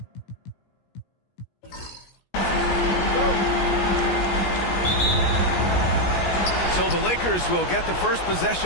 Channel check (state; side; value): late; right; 17 ms